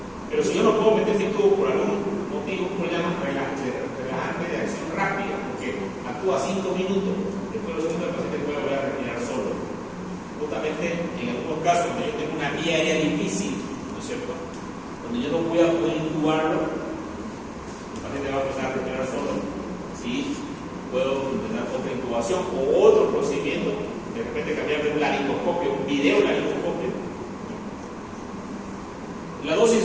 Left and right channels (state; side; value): identical; both; correlation 1.00